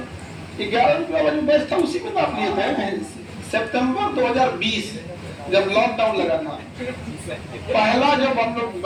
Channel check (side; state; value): both; identical; correlation 1.00